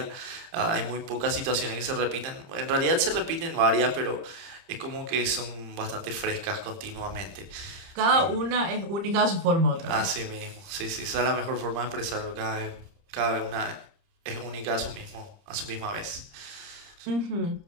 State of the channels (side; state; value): left; late; 30 ms